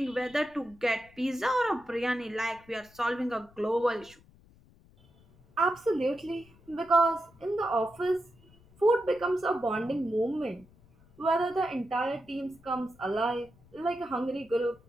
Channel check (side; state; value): left; noise; rumble, 27 dB below the sound